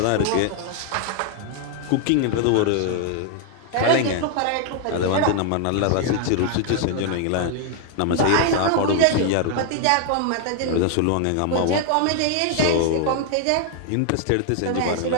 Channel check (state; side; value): different; both; correlation 0.00